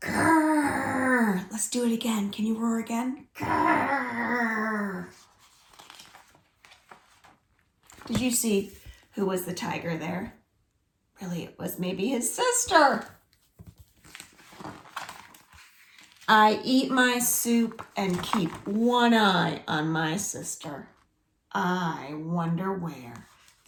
Let's do it again. Can you roar again? Grrr. Did you see who was the tiger there? Really, it was maybe his sister. I eat my soup and keep one eye on my sister. I wonder where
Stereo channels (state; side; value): identical; both; correlation 1.00